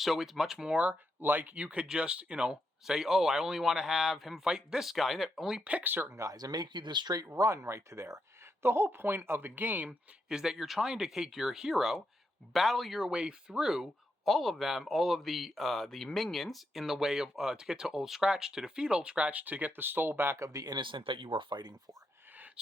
it's much more like you could just, say, oh, I only want to have him fight this guy, and only pick certain guys and make you the straight run right to there. The whole point of the game is that you're trying to take your hero, battle your way through all of the minions in the way of to get to Old Scratch, to defeat Old Scratch, to get the soul back of the innocent that you were fighting for.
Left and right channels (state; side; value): normal; both; correlation 0.82